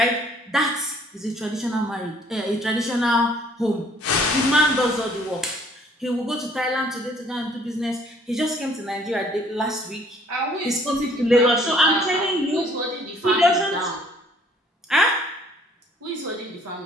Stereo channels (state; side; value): normal; both; correlation 0.59